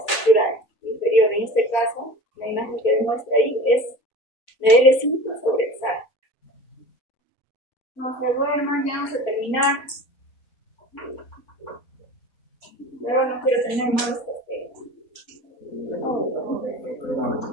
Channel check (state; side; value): late; right; 4.4 ms